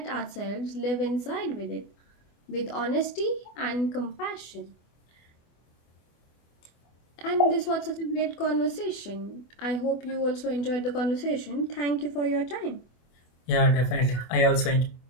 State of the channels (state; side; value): late; right; 24 ms